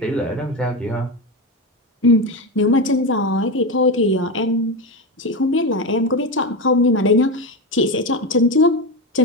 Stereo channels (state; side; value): normal; both; correlation 0.16